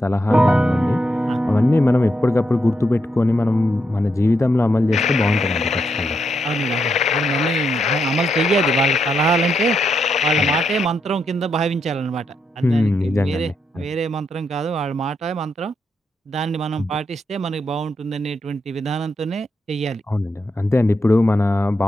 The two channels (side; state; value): both; normal; correlation 0.81